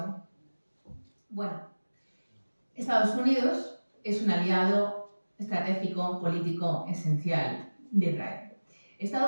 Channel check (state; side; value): inverted; both; correlation -1.00